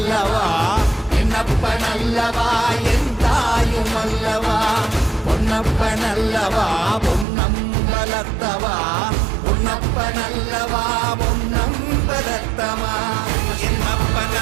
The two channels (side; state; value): left; drops out; at 7.2 s